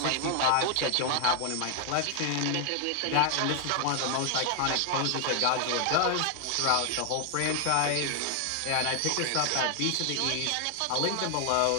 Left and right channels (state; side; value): different; both; correlation 0.00